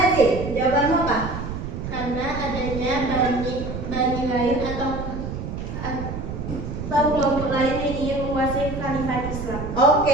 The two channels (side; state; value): right; noise; rumble, 6 dB below the sound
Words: sih? Jawabanmu apa? Karena adanya bani lain atau kelompok lain yang ingin menguasai khalifah Islam.